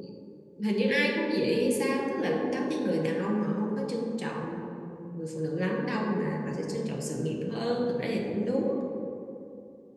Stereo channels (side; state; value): both; identical; correlation 1.00